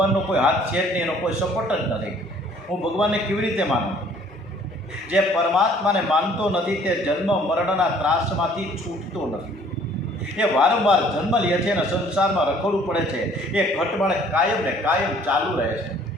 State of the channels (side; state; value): both; normal; correlation 0.57